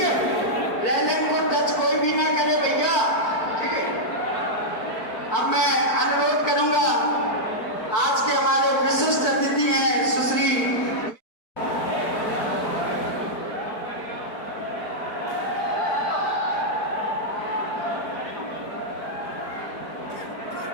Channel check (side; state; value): right; late; 4.6 ms